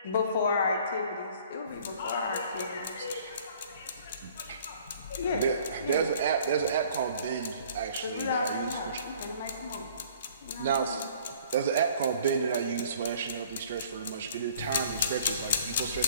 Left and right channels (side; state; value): both; inverted; correlation -0.54